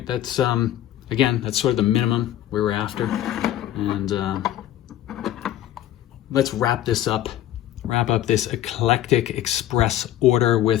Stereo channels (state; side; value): quieter; right; 12.4 dB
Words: That's, again, that's sort of the minimum we were after. And let's wrap this up wrap up this eclectic express order